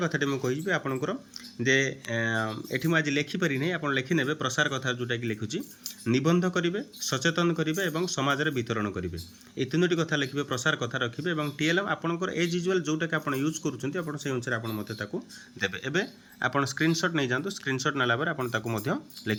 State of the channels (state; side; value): identical; both; correlation 1.00